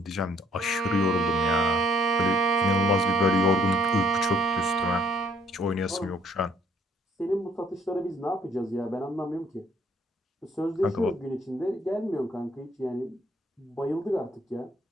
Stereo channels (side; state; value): both; normal; correlation 0.64